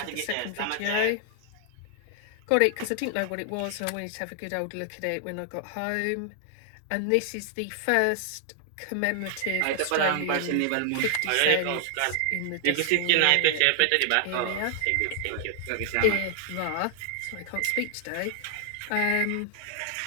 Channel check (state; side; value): different; both; correlation 0.00